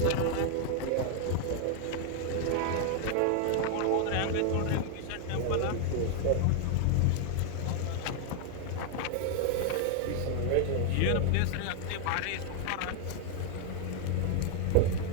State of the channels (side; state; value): both; different; correlation 0.00